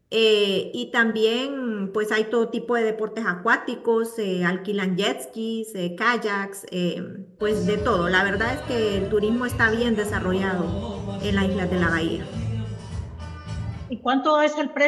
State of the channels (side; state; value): both; identical; correlation 1.00